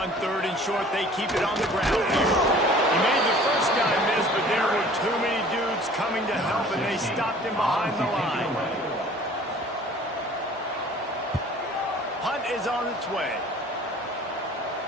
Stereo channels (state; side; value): normal; both; correlation 0.49